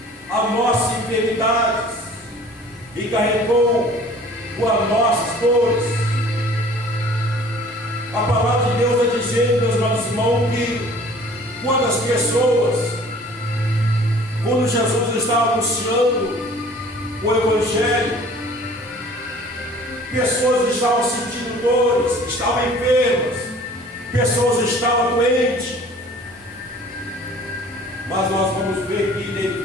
as nossas enfermidades e carregou com as nossas dores. A palavra irmãos, que quando Jesus estava anunciando o Evangelho, pessoas estavam sentindo dores, estavam enfermas, pessoas estavam doentes. Mas nós vamos ver que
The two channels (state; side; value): normal; both; correlation 0.49